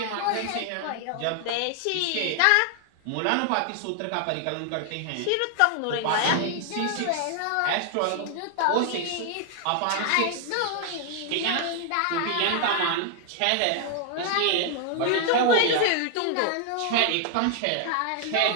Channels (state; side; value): different; both; correlation 0.00